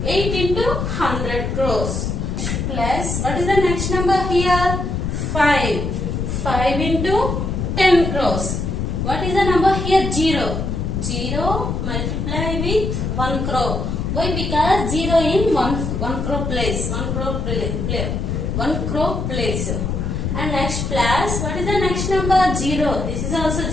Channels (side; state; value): left; noise; rumble, 2 dB below the sound